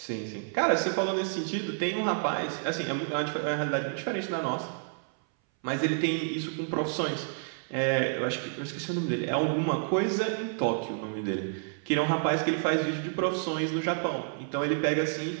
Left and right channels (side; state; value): left; silent; 57 dB below the other